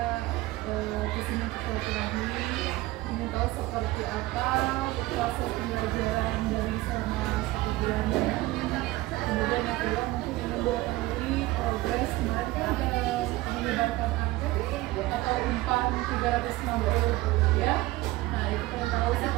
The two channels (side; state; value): left; quieter; 18.8 dB